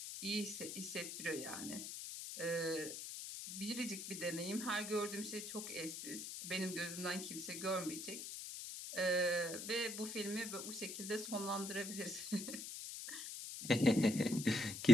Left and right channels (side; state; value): left; noise; hiss, 6 dB below the sound